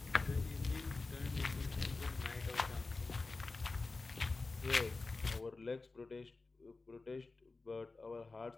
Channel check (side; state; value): right; quieter; 3.7 dB